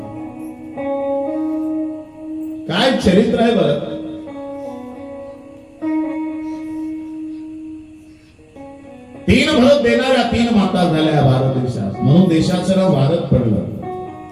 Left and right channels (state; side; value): identical; both; correlation 1.00